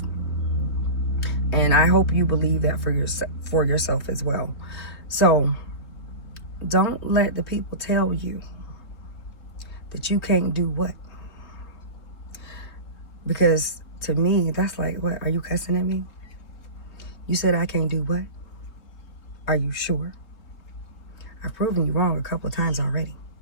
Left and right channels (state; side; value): late; right; 3.7 ms